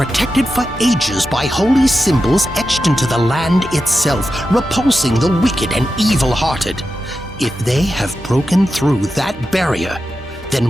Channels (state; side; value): normal; both; correlation 0.90